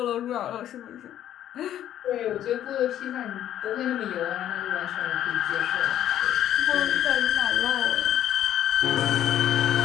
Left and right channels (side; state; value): right; quieter; 11.4 dB